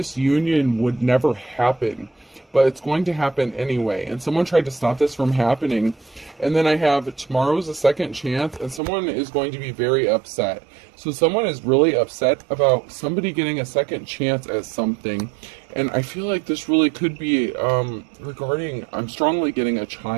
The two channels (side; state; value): left; drops out; at 8.8 s